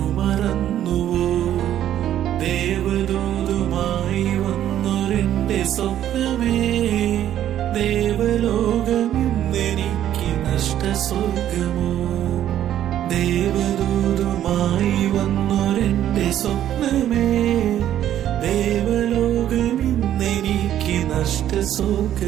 മറന്നുവോ? ദേവദൂതുമായി വന്നൊരെന്റെ സ്വപ്നമേ, ദേവലോകം ഇന്നെനിക്ക് നഷ്ടസ്വർഗമോ? ദേവദൂതുമായി വന്നൊരെന്റെ സ്വപ്നമേ, ദേവലോകം ഇന്നെനിക്ക്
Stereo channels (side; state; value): left; quieter; 11.4 dB